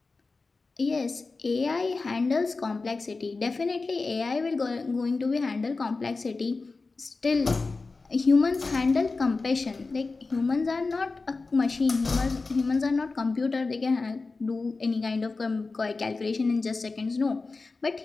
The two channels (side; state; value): right; quieter; 3.9 dB